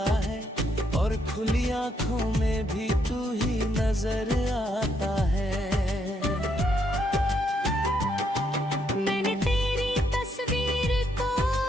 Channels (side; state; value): both; normal; correlation 0.75